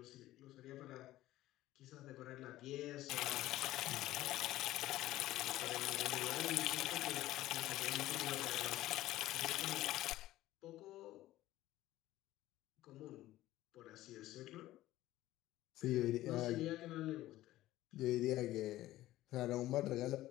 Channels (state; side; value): quieter; right; 15.5 dB